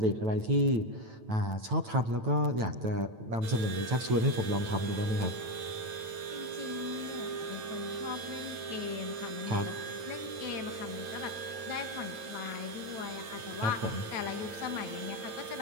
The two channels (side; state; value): left; late; 9.1 ms